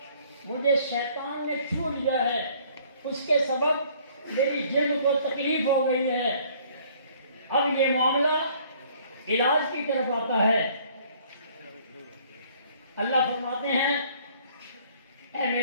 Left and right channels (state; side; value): inverted; both; correlation -0.58